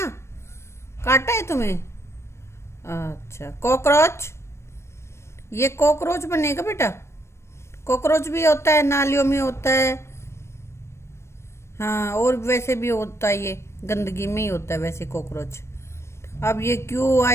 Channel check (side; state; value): right; late; 0.13 ms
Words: काटा है तुम्हें? अच्छा। कॉकरोच, ये कॉकरोच बनेगा बेटा। कॉकरोच भी होता है, नालियों में होता है, हाँ, और वैसे भी होता है, ये गंदगी में ही होता है वैसे कॉकरोच। अब ये